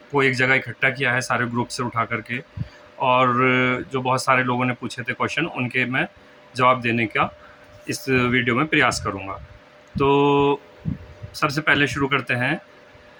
एक जगह इकट्ठा किया है सारे ग्रुप से उठा करके। और जो बहुत सारे लोगों ने पूछे थे क्वेश्चन, उनके मैं जवाब देने का इस वीडियो में प्रयास करूँगा। तो सबसे पहले शुरू करते हैं।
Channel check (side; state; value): both; identical; correlation 1.00